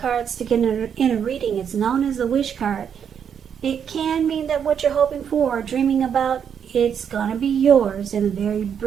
to get in a reading. It's known as the wish card. It can mean that what you're hoping for or dreaming about, it's going to be yours in a very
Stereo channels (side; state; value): left; quieter; 7.9 dB